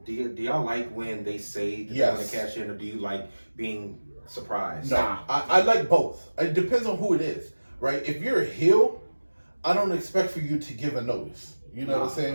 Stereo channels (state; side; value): inverted; both; correlation -1.00